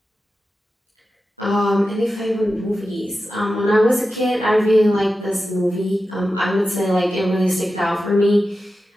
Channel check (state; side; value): normal; both; correlation 0.92